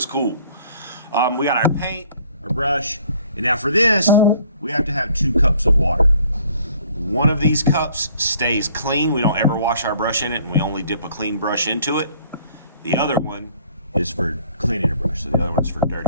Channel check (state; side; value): inverted; both; correlation -0.58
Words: cool. We got our paint, our brush, and now for this, we have to have 2 cups of water. One of these cups stays clean. We don't ever wash our brush in it, and we only dip a clean brush into it. The other one is for cleaning a brush, so the other one's for